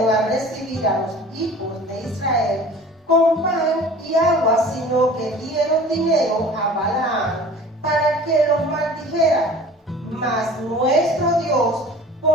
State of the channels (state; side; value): normal; both; correlation 0.44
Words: a recibir a los hijos de Israel con pan y agua, sino que dieron dinero a Balaam para que los maldijera. Mas nuestro Dios